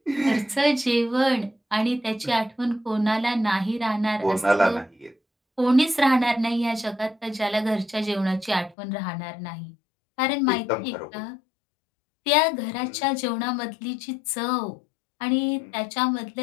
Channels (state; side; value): drops out; right; at 8.8 s